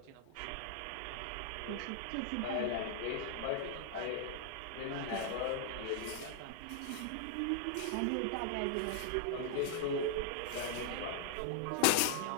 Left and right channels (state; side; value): different; both; correlation 0.00